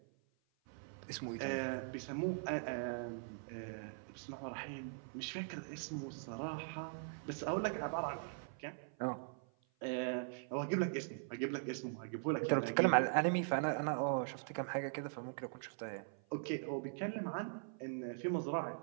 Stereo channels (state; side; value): silent; left; 50 dB below the other